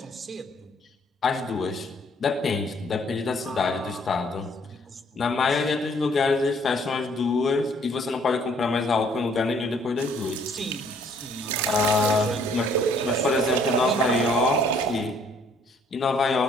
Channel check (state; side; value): normal; both; correlation 0.62